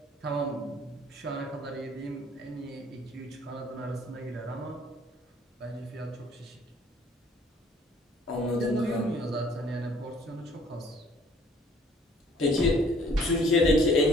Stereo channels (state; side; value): normal; both; correlation 0.57